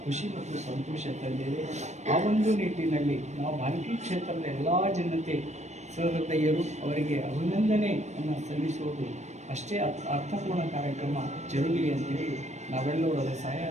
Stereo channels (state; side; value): late; left; 0.33 ms